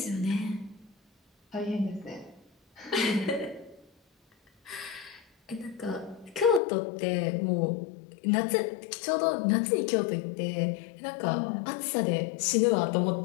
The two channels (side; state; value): right; drops out; at 6.6 s